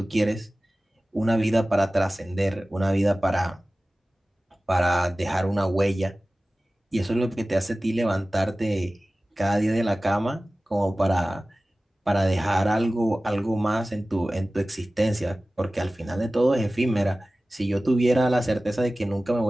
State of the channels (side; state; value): both; normal; correlation 0.97